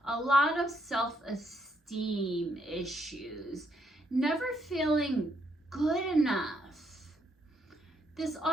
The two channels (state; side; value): normal; both; correlation 0.74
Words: a lot of self-esteem issues, never feeling good enough. This